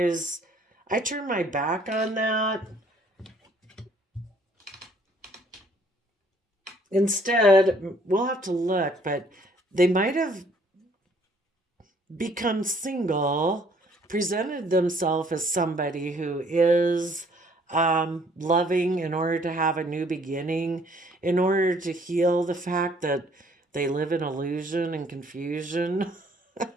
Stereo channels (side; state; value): both; normal; correlation 0.61